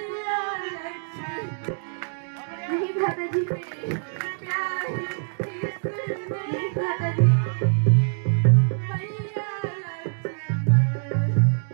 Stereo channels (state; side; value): silent; left; digital silence